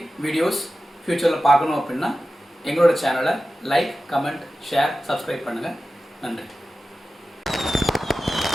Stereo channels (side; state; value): both; normal; correlation 0.94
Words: வீடியோஸ் ஃப்யூச்சரில் பார்க்கணும் அப்படின்னா எங்களோட சேனலை லைக், கமெண்ட், ஷேர், சப்ஸ்கிரைப் பண்ணுங்கள். நன்றி.